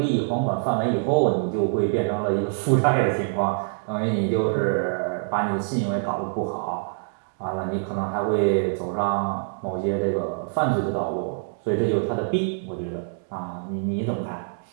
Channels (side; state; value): left; silent; digital silence